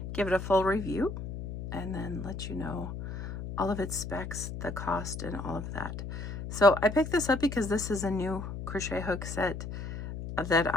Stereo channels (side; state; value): left; noise; hum, 7 dB below the sound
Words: give it a full review, and then let you know all of its specs, the cost, and all of that. So I picked this up because this is a new crochet hook set that